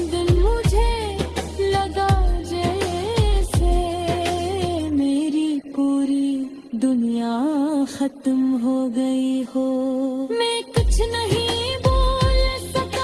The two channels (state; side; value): identical; both; correlation 1.00